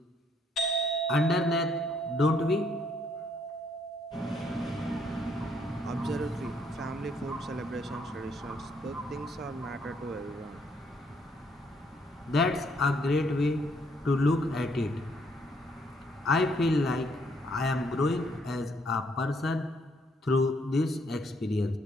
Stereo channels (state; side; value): normal; both; correlation 0.69